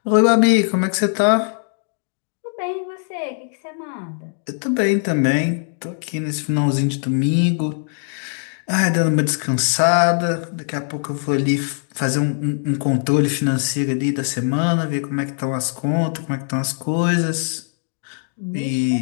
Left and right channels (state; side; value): silent; right; digital silence